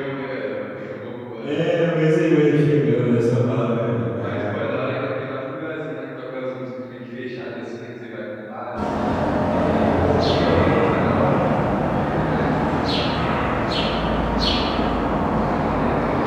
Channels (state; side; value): identical; both; correlation 1.00